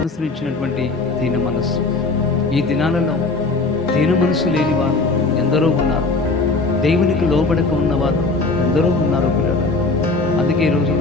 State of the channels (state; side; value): quieter; right; 3.6 dB